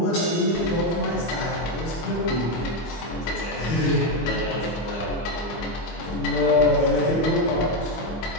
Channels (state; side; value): late; right; 25 ms